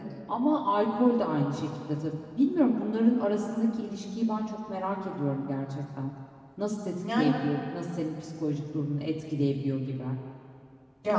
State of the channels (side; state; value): both; identical; correlation 1.00